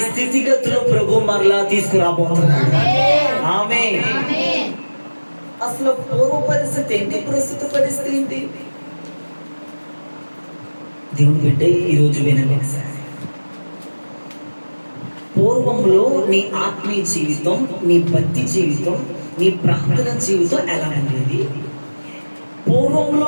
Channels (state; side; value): inverted; both; correlation -1.00